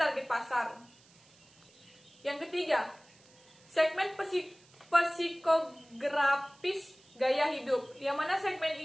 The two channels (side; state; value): right; noise; hiss, 28 dB below the sound